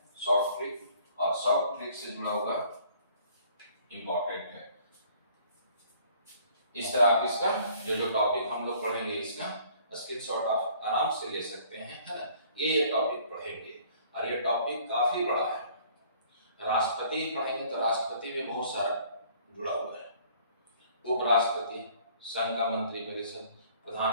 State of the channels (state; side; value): inverted; both; correlation -0.56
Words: शॉर्ट ट्रिक। और शॉर्ट ट्रिक से जुड़ा हुआ इम्पोर्टेंट है। इस तरह आप इसका जो टॉपिक हम लोग पढ़ेंगे इसका स्क्रीनशॉट आप आराम से ले सकते हैं, है ना। ये टॉपिक पढ़ेंगे और ये टॉपिक काफी बड़ा है। राष्ट्रपति पढ़ेंगे तो राष्ट्रपति में बहुत सारा जुड़ा हुआ है, उपराष्ट्रपति, संघ का मंत्री परिषद,